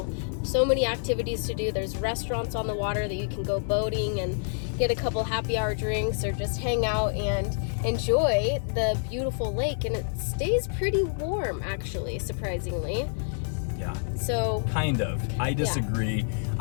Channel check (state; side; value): silent; right; digital silence